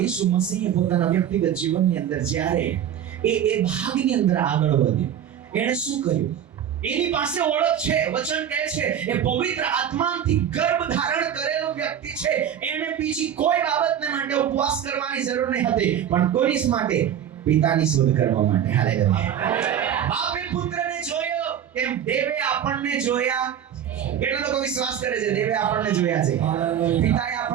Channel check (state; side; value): quieter; left; 9.5 dB